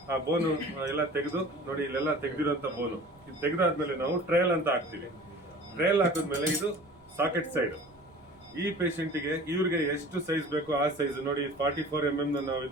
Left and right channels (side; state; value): right; noise; rumble, 29 dB below the sound